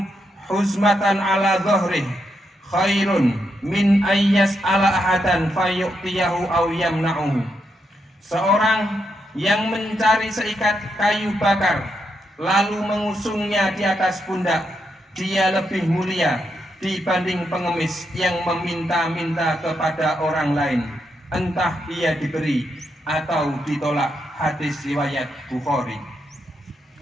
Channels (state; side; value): normal; both; correlation 0.81